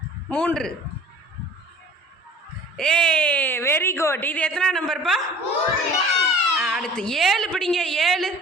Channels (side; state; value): both; normal; correlation 0.46